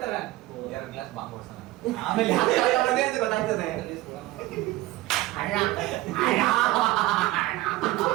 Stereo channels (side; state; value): left; quieter; 17.6 dB